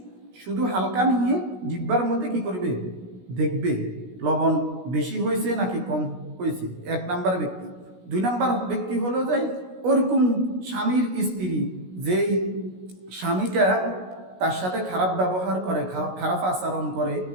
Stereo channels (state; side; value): late; left; 16 ms